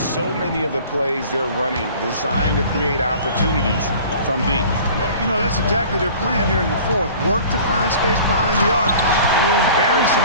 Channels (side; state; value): both; inverted; correlation -0.45